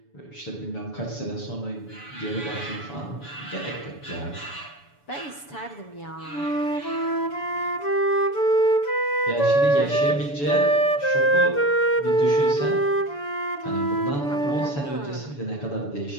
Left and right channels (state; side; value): late; right; 7.0 ms